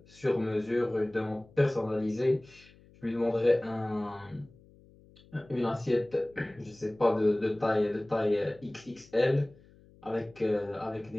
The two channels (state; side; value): noise; left; hum, 26 dB below the sound